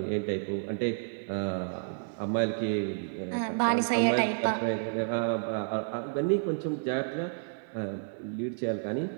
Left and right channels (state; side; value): silent; left; digital silence